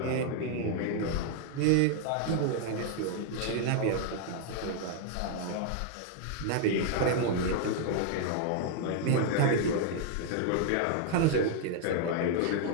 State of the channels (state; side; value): different; both; correlation 0.00